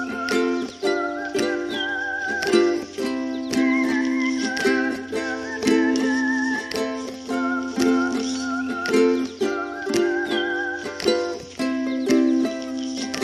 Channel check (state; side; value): identical; both; correlation 1.00